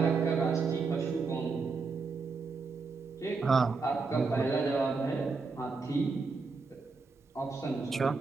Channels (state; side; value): quieter; left; 4.4 dB